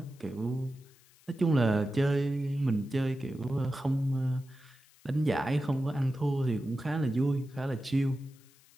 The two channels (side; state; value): left; noise; hiss, 28 dB below the sound